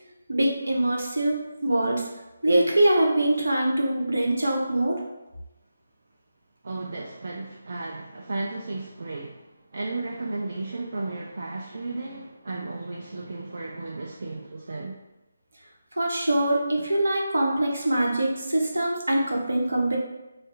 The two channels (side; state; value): both; inverted; correlation -0.91